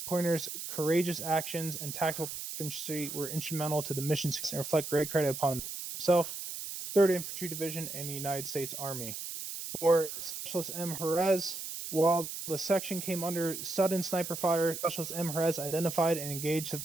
Pointer's courageous actions and tactical proficiency were instrumental to the mission success and reflect great credit upon himself, 3rd Infantry Division, and the United States Army. For Specialist M. Jerez, while the section came under sudden sniper fire, Specialist M. Jerez identified and engaged the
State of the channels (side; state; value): right; noise; hiss, 7 dB below the sound